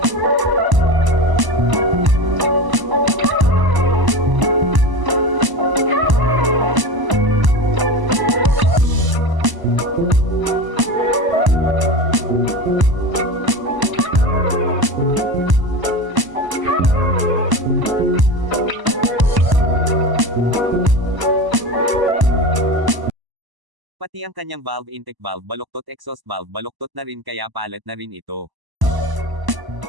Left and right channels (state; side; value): late; left; 1.0 ms